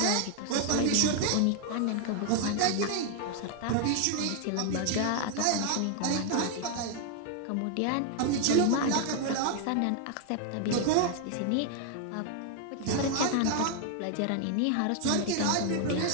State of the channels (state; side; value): different; both; correlation 0.00